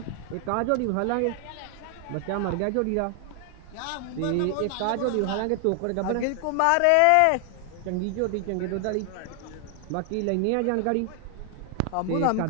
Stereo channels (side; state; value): both; different; correlation 0.00